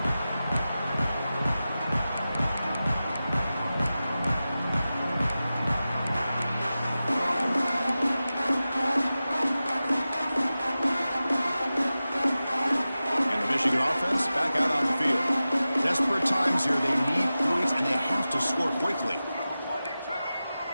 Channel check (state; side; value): inverted; both; correlation -0.94